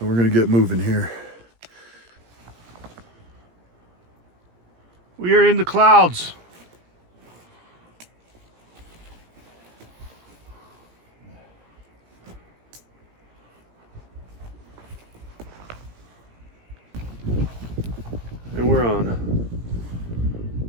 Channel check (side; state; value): left; late; 17 ms